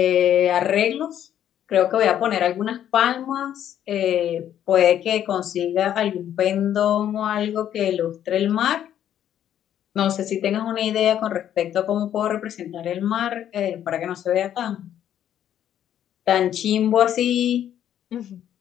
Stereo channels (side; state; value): right; quieter; 10.6 dB